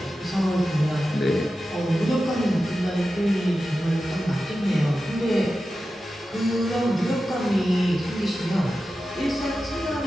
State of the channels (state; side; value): normal; both; correlation 0.92